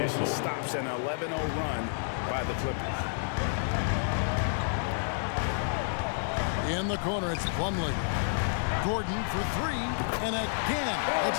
stops an 11-0 run by the Clippers. In the corner, it's Plumlee. Gordon for three, and again,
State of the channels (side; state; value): right; silent; digital silence